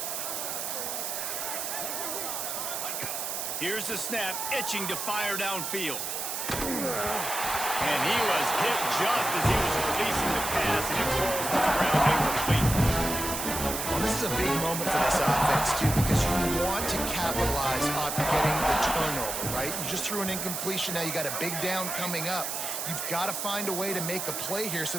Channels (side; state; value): right; noise; hiss, 3 dB below the sound